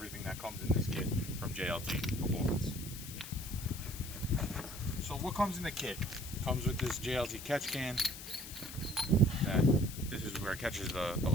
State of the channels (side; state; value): left; noise; hiss, 11 dB below the sound